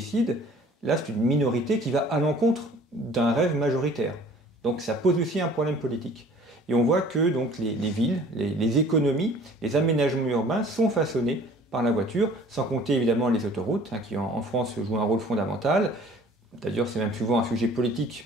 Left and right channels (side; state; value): both; normal; correlation 0.50